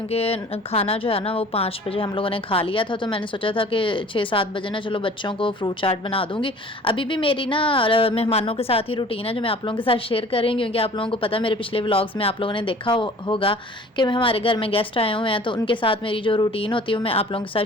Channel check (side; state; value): both; normal; correlation 0.48